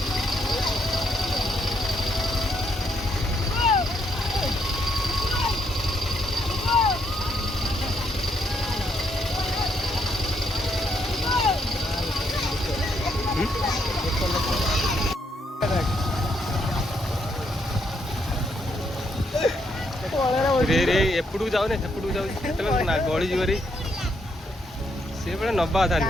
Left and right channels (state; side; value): normal; both; correlation 0.75